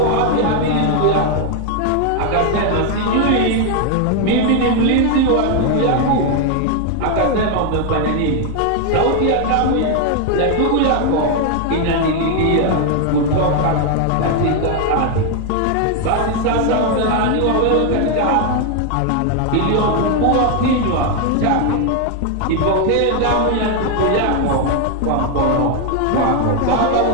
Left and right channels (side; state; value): both; different; correlation 0.01